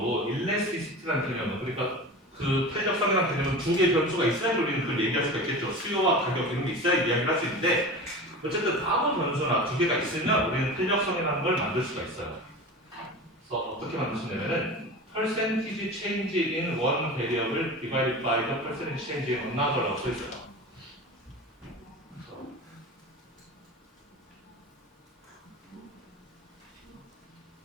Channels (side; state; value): both; normal; correlation 0.32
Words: 일레스티시티라는 개념은 그러니까 그 탄력성이라는 개념은 두 개의 변수가 있어야 우리는 그걸 얘기할 수가 있겠죠. 수요와 가격 이런 게 있어야 이야기를 할 수 있는데 어쨌든 아무 변수나 두 개가 있으면 우리는 탄력성이라는 걸 만들 수가 있어요. 그래서 어떻게 만들 수 있냐면은 percentage change in one variable divided by the percentage change in another라고 써 있어요.